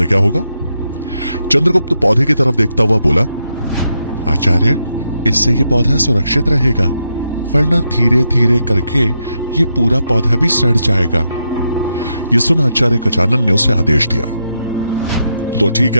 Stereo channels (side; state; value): both; inverted; correlation -0.83